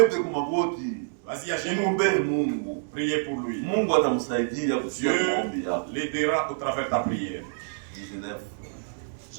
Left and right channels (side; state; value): left; silent; digital silence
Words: kumagoti. Vas-y à genoux. Mungu. Priez pour lui. Mungu atamsaidia kusikia maombi yako. Dieu l'aidera au travers ta prière. 19.